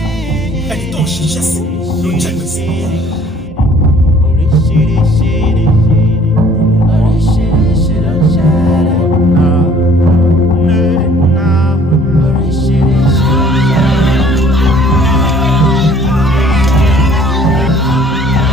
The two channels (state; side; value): normal; both; correlation 0.56